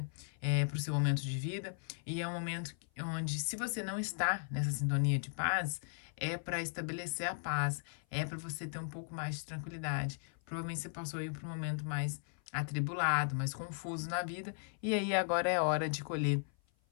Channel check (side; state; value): right; silent; 53 dB below the other